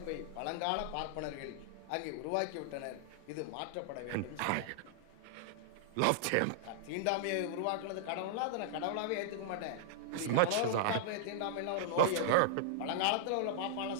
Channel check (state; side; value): different; both; correlation -0.01